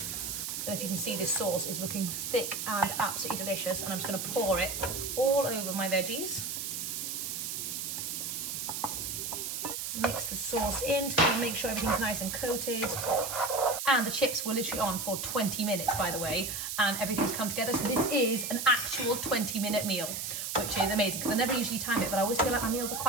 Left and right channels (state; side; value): noise; right; hiss, 4 dB below the sound